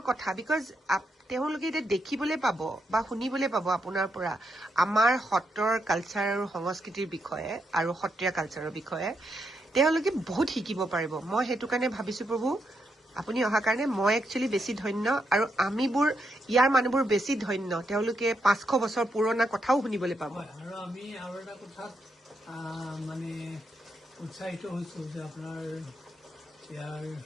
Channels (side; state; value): both; normal; correlation 0.81